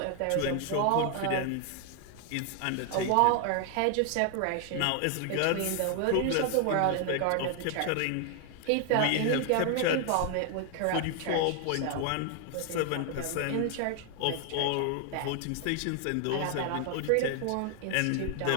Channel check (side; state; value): both; different; correlation 0.00